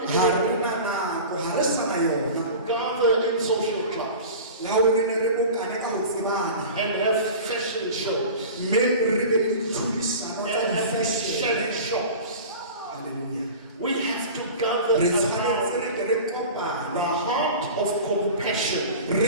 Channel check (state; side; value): inverted; both; correlation -0.35